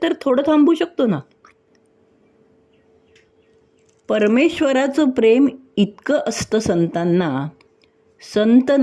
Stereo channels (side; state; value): both; identical; correlation 1.00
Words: तर थोडं थांबू शकतो ना. परमेश्वराचं प्रेम इतकं असतं संतांना. संत